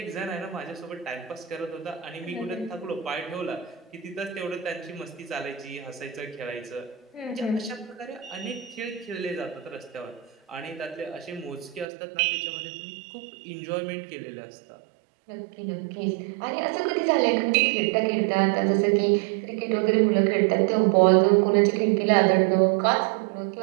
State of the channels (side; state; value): left; drops out; at 11.9 s